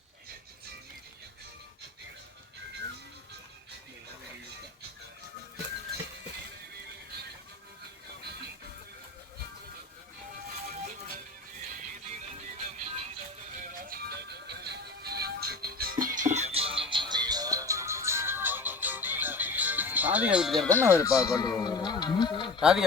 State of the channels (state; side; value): quieter; right; 3.7 dB